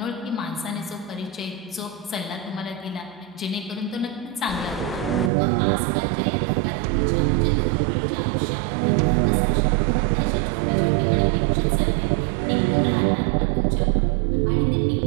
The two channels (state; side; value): drops out; left; at 5.3 s